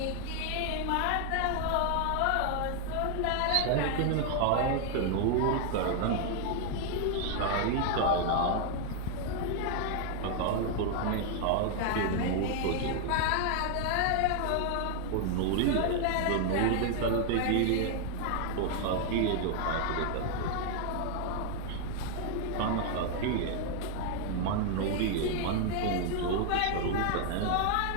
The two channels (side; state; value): both; different; correlation 0.00